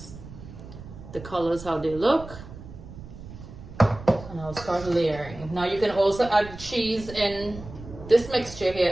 the colors, how they look. And I'll start layering. Now you can also add cheese in this mixture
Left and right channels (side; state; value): right; noise; rumble, 14 dB below the sound